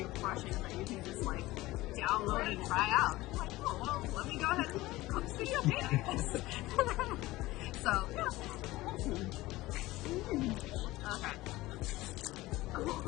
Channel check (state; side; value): quieter; right; 18.5 dB